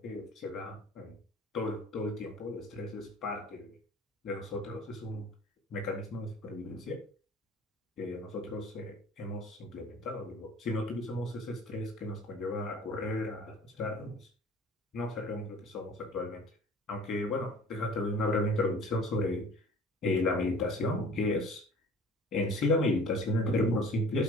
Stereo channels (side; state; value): both; normal; correlation 0.47